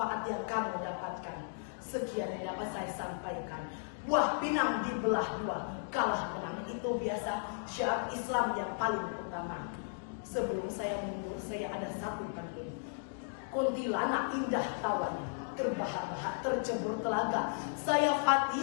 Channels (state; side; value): silent; right; digital silence